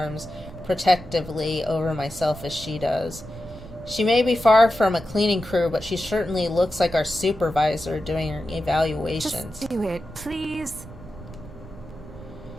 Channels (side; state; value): right; noise; rumble, 16 dB below the sound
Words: protectively over myself as she does. She may be far from a cleaning crew, but she certainly looks like our supervisor doing her evaluations. Just do it, please.